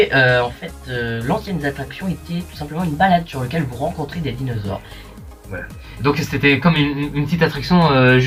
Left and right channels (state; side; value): identical; both; correlation 1.00